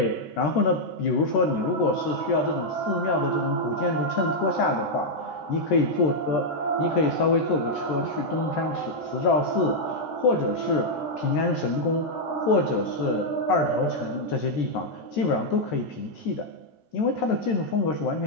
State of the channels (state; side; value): late; right; 13 ms